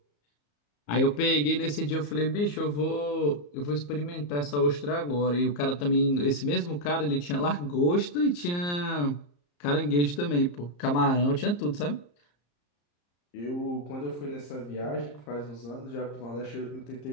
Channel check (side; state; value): right; late; 34 ms